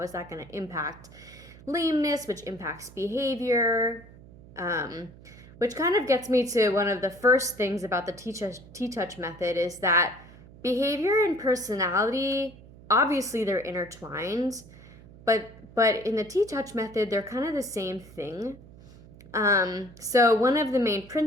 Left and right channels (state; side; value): noise; right; hum, 20 dB below the sound